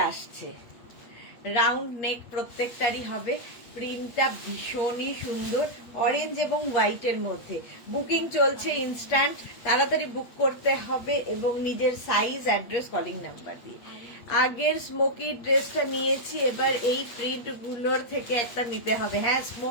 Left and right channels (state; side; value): late; right; 8.2 ms